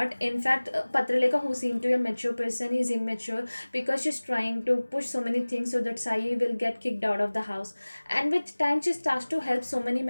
In fact, Patraleka, who seemed to be a mature person, is immature because she's trying to push so many things so that Sai will get kicked out of the house. And with time, she starts to help so many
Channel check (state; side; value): inverted; both; correlation -1.00